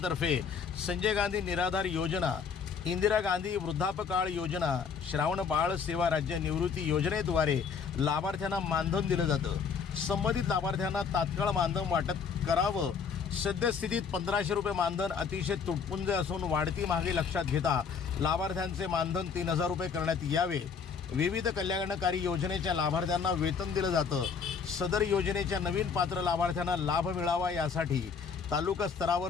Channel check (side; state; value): right; quieter; 6.0 dB